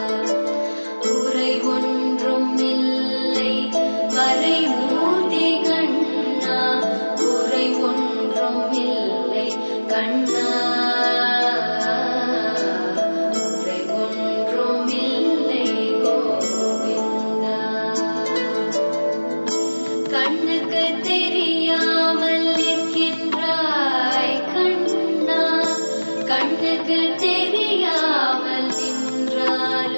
குறை ஒன்றும் இல்லை மறைமூர்த்தி கண்ணா, குறை ஒன்றும் இல்லை கண்ணா, குறை ஒன்றும் இல்லை கோவிந்தா. கண்ணுக்கு தெரியாமல் நிற்கின்றாய் கண்ணா, கண்ணுக்கு தெரியாமல்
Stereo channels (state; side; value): inverted; both; correlation -1.00